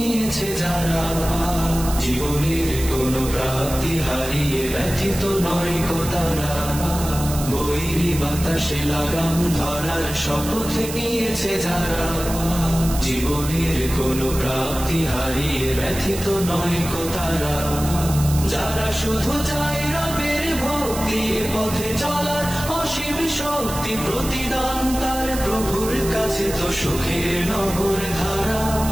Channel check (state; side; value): noise; right; hiss, 9 dB below the sound